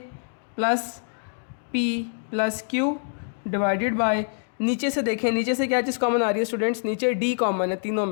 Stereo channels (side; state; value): right; silent; digital silence